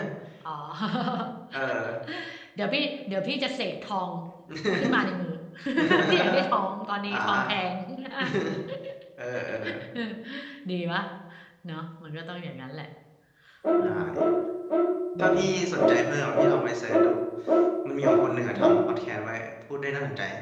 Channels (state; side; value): identical; both; correlation 1.00